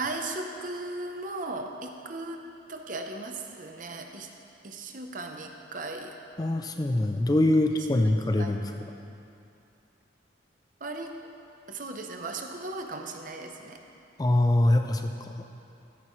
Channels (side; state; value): both; normal; correlation 0.83